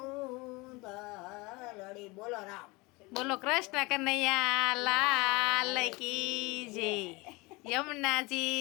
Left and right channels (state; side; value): quieter; right; 24.5 dB